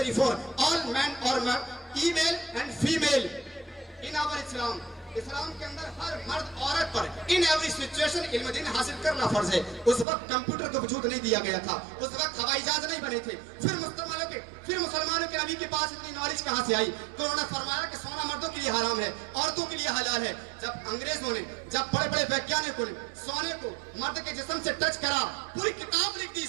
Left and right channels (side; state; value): left; drops out; at 10.1 s